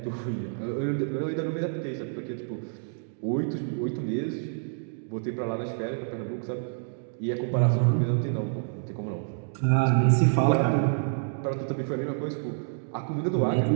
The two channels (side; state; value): left; silent; digital silence